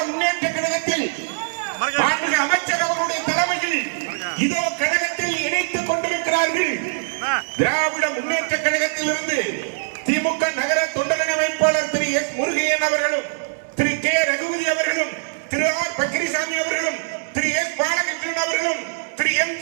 முன்னேற்ற கழகத்தில் அமைச்சர் அவர்களுடைய தலைமையில் இதோ கழகத்தில் இணைத்துக் கொண்டிருக்கிறார்கள். திராவிட முன்னேற்ற கழகத்தில் இருந்து திமுக நகர தொண்டரணி அமைப்பாளர் திரு எஸ் முருகையன் அவர்களும், திரு கே ரகுபதி அவர்களும், திரு ஆர் பக்கிரிசாமி அவர்களும், திரு எஸ் பாலகிருஷ்ணன் அவர்களும், திரு எம்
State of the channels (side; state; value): left; silent; 64 dB below the other